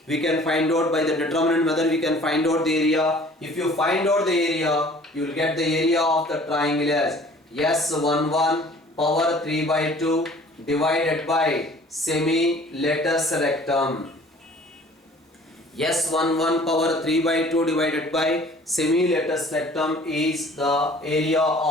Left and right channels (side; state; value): both; normal; correlation 0.51